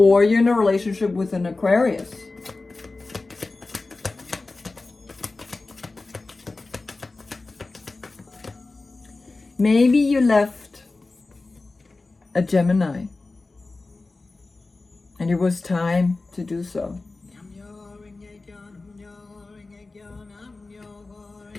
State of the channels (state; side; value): quieter; right; 3.5 dB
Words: you're in a relationship with an Aquarius. Maybe you left a Gemini. And it was time to do so.